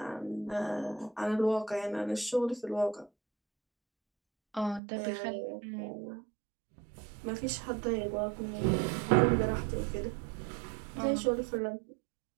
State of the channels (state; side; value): drops out; left; at 4.8 s